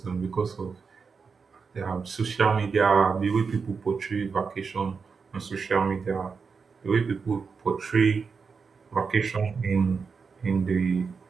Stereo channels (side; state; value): left; quieter; 5.3 dB